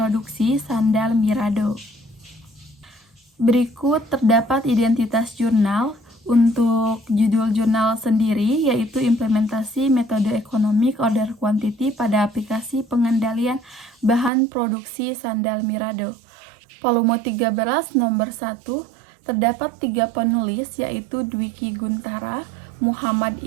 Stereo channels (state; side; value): drops out; left; at 14.3 s